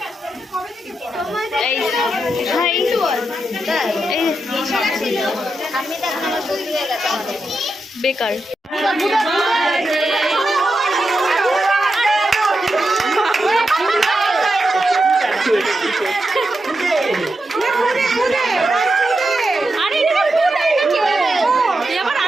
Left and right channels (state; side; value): normal; both; correlation 0.87